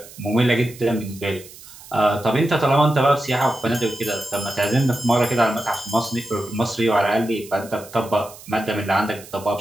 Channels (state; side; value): noise; right; hiss, 19 dB below the sound